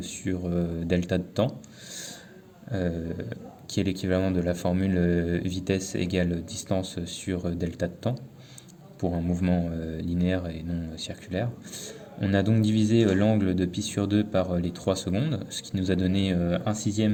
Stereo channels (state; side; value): identical; both; correlation 1.00